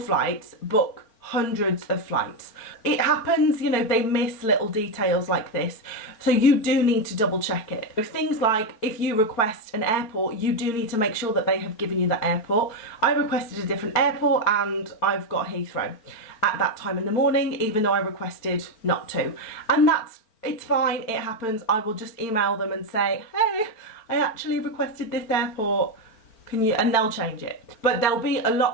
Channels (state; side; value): late; right; 4.4 ms